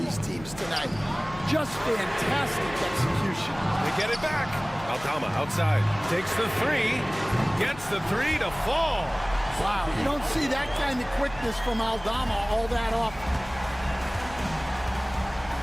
teams tonight? Just fantastic execution. They get it back. Aldama outside. Takes the 3. Gets the 3 to fall. Wow, you don't see that kind of quickness from Aldama all that often.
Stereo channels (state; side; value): noise; left; hum, 17 dB below the sound